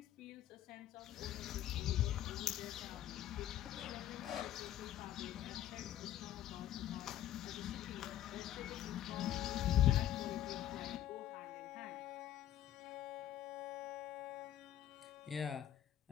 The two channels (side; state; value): right; quieter; 12.0 dB